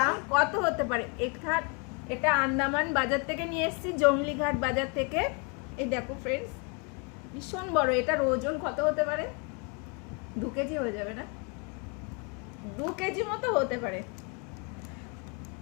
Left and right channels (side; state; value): right; quieter; 34.8 dB